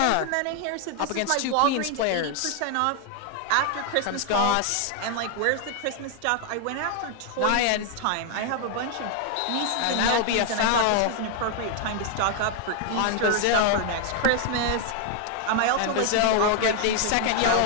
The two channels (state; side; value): different; both; correlation 0.00